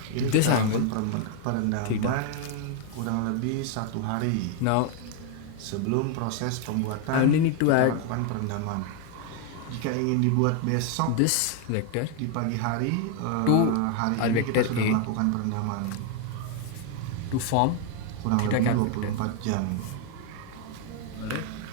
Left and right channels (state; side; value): different; both; correlation 0.00